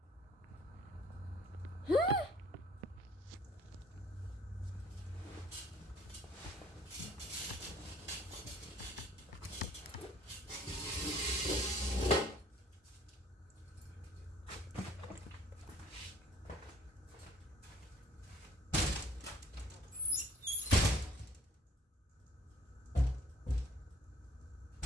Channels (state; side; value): normal; both; correlation 0.57